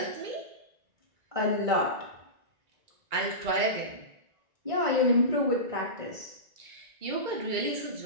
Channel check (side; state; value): left; late; 1.9 ms